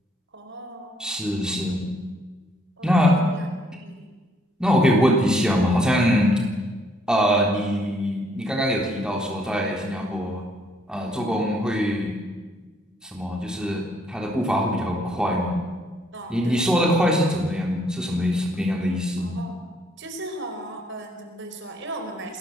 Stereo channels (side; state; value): both; normal; correlation 0.68